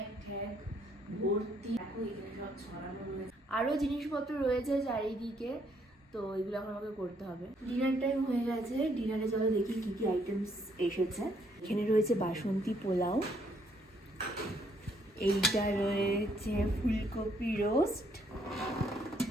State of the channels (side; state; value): both; normal; correlation 0.69